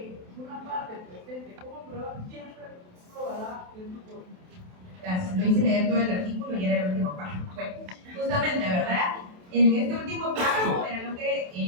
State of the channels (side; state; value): left; late; 27 ms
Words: una parte presente como prueba siempre probará en su forma. Gracias, lo hice leer todo el artículo y era el último párrafo. Bueno, justamente, ¿verdad? En este último párrafo era lo